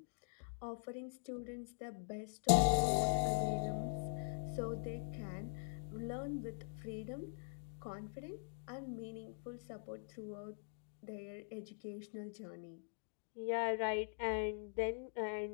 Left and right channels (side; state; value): right; silent; digital silence